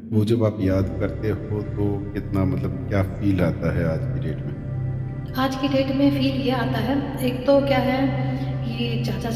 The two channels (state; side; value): identical; both; correlation 1.00